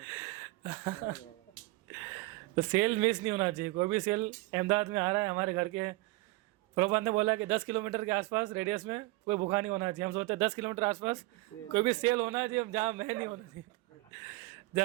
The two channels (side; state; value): left; quieter; 20.8 dB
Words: तो सेल मिस नहीं होना चाहिए, कोई भी सेल अहमदाबाद में आ रहा है हमारे घर के, प्रभुपाद ने बोला कि 10 किलोमीटर के आसपास रेडियस में कोई भूखा नहीं होना चाहिए। हम सोचते हैं 10 किलोमीटर आसपास कोई भी सेल होना चाहिए, जहाँ मैं नहीं होना चाहिए,